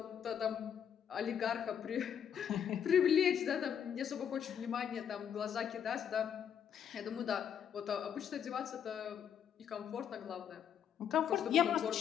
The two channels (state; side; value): quieter; right; 8.5 dB